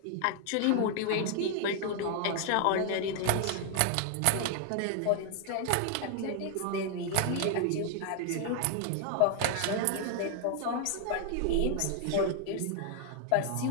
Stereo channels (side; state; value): both; different; correlation 0.00